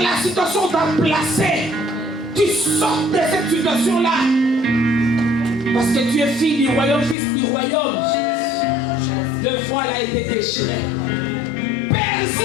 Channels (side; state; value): right; drops out; at 7.2 s